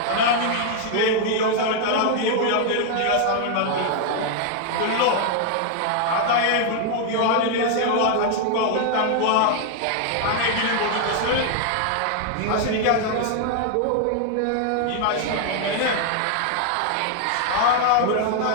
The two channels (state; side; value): different; both; correlation 0.00